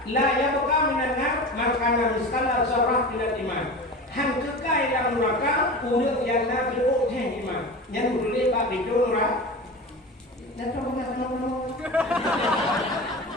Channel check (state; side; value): normal; both; correlation 0.31